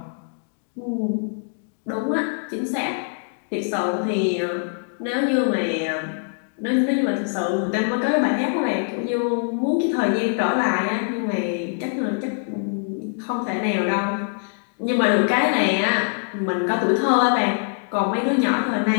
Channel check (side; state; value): right; silent; digital silence